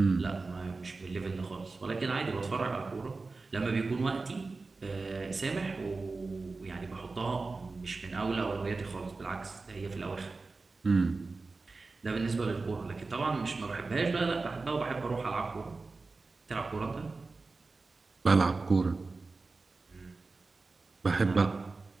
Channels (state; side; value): quieter; left; 3.8 dB